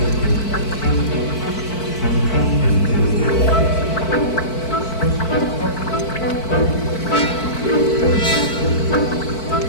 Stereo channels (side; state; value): right; late; 4.5 ms